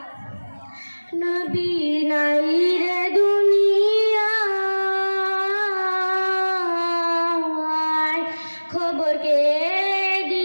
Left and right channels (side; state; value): both; inverted; correlation -1.00